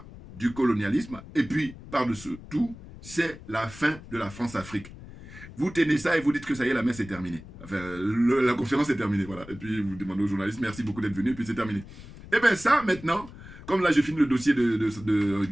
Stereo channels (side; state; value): left; noise; rumble, 16 dB below the sound